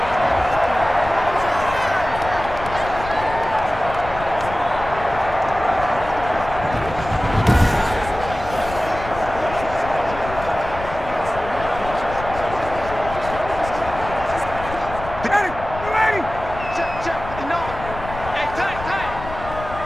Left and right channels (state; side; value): noise; left; rumble, 11 dB below the sound